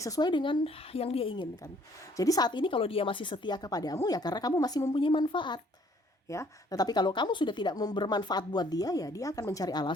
sesuai dengan yang dia inginkan. Jadi saat ini kalau dia masih setia kepadamu ya karena kamu masih mempunyai manfaat ya. Tetapi kalau kamu sudah tidak bermanfaat buat dia, ya dia akan mencari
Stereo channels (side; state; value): both; normal; correlation 0.61